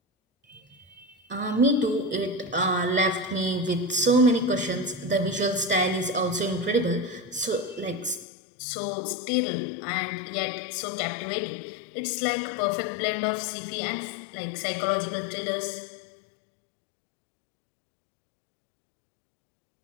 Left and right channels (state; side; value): drops out; right; at 8.2 s